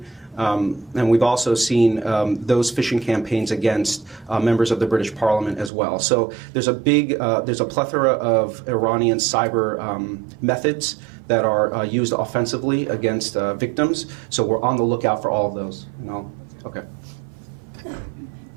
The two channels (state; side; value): drops out; left; at 5.7 s